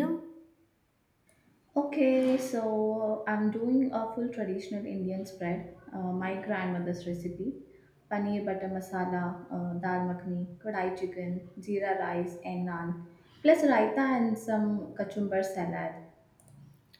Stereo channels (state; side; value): identical; both; correlation 1.00